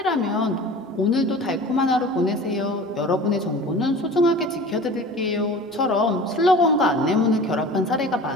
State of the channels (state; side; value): normal; both; correlation 0.39